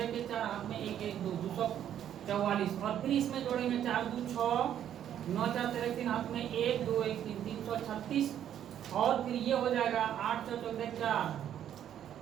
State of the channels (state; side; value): quieter; left; 10.3 dB